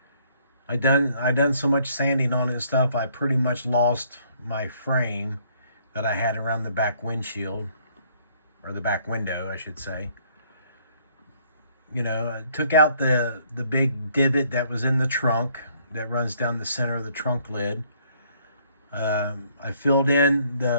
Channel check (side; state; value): both; inverted; correlation -0.65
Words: I done so much sanding on it and stuff, I pretty much lost my frame that I had around the back windshield, or the back window, I should say. I took out the big divot that was in the trunk that runs down the center of the trunk lid. I filled in